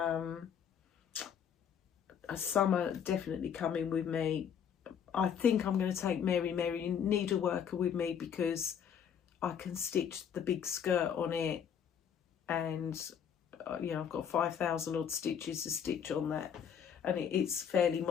Some are definitely coming with me. I think I'm going to take Mary Needleworker with me, because I can stitch the big skirt on it, and you know, I've got 5,000 odd stitches to stitch on that, and it's fairly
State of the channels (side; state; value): right; quieter; 8.1 dB